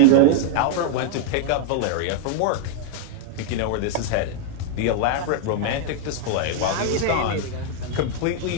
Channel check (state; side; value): different; both; correlation 0.00